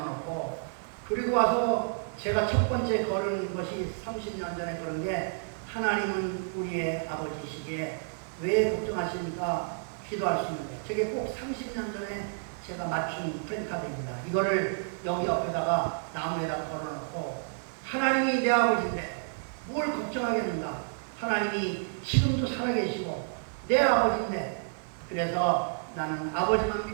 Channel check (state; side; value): silent; left; digital silence